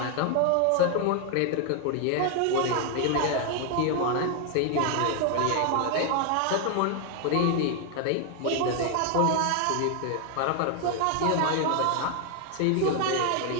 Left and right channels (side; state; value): both; different; correlation 0.00